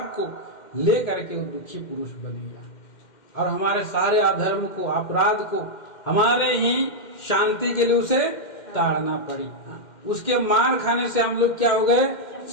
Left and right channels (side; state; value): right; late; 2.1 ms